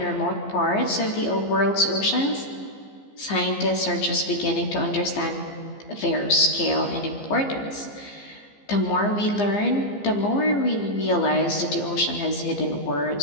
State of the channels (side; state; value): right; late; 15 ms